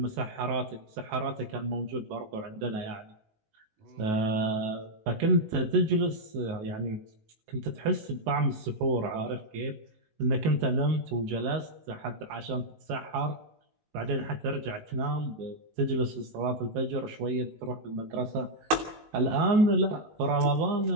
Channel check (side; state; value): left; late; 19 ms